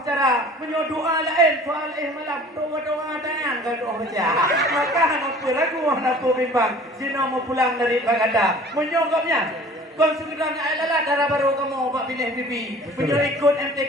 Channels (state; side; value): normal; both; correlation 0.47